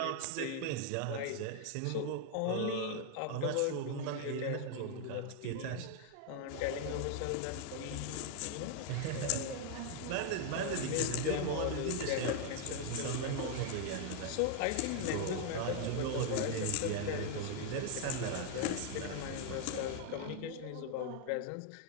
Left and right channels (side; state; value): both; different; correlation 0.00